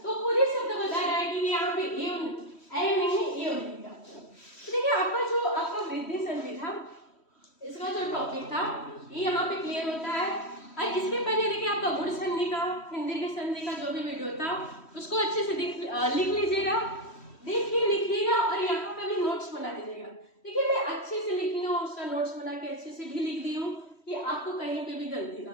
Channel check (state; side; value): late; right; 3.1 ms